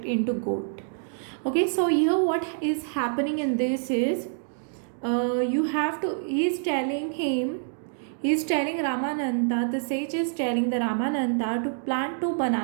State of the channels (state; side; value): silent; left; digital silence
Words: into gold. Okay, so here what is happening in this is he's telling Ramananda, the sage is telling the Ramananda to plant 2